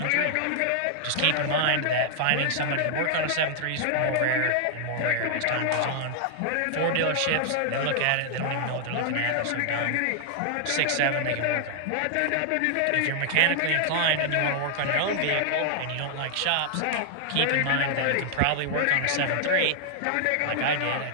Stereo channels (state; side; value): different; both; correlation -0.01